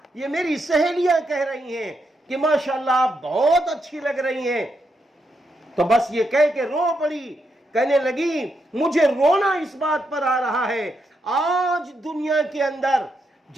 یہ میری سہیلیاں کہہ رہی ہیں کہ ماشاءاللہ آپ بہت اچھی لگ رہی ہیں. تو بس یہ کہہ کے رو پڑی، کہنے لگی مجھے رونا اس بات پر آ رہا ہے، آج دنیا کے اندر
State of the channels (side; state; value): both; normal; correlation 0.82